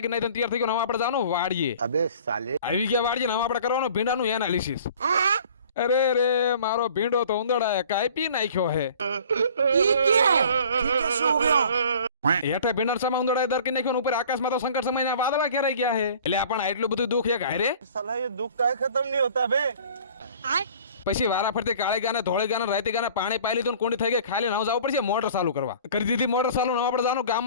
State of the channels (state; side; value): inverted; both; correlation -0.49